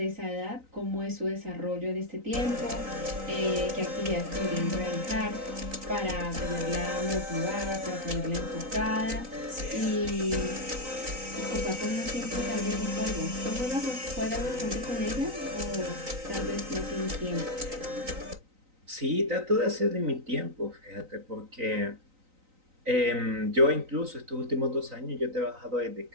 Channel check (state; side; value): late; left; 3.9 ms